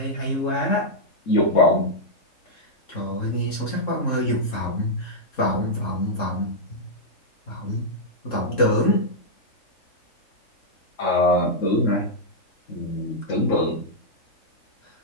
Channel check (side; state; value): right; late; 3.7 ms